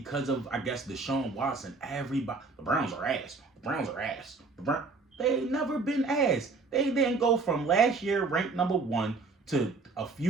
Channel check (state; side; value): quieter; left; 4.0 dB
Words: of, I guess, Deshaun Watson, everybody, the Browns are ass. The Browns are ass. They ain't never been ass. They didn't go from last year ranked number 1 to a